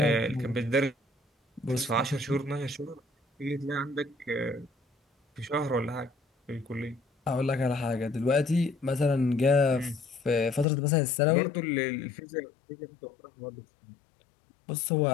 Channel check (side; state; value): right; drops out; at 10.7 s